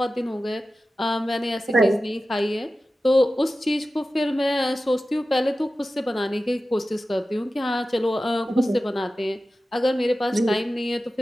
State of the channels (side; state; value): both; normal; correlation 0.94